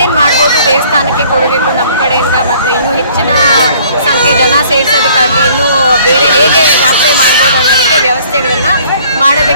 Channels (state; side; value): inverted; both; correlation -0.56